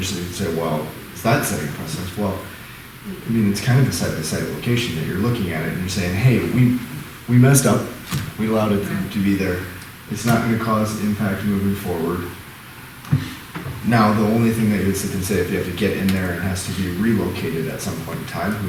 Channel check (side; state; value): both; identical; correlation 1.00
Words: you'd say, well, is that setting a precedence? Well, I mean, it's kind of a side-by-side location that you're looking at it and you're saying, hey, we messed up, we allowed it to be there. It's not gonna cause impact moving forward. Now, the only thing that you would sit and say, if you have to get in there and has to be relocated at some point in time,